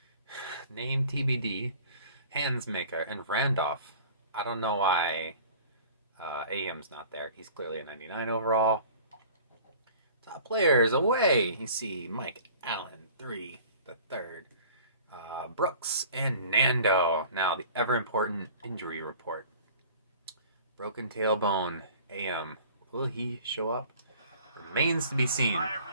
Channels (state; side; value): inverted; both; correlation -0.46